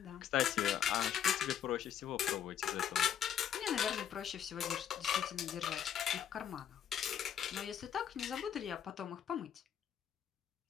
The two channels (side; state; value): right; quieter; 9.2 dB